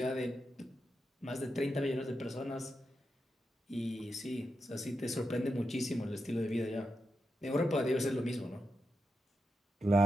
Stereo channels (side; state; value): both; normal; correlation 0.87